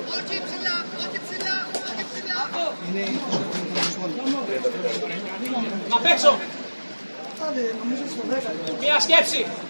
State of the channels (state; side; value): inverted; both; correlation -1.00